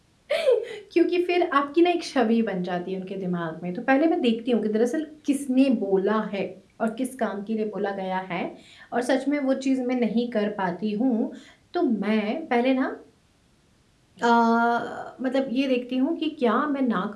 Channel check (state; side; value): identical; both; correlation 1.00